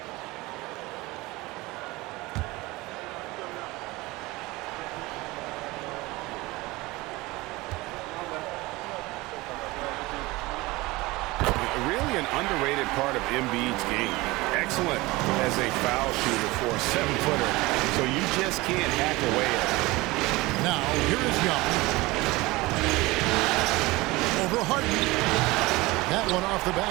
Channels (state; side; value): quieter; left; 21.3 dB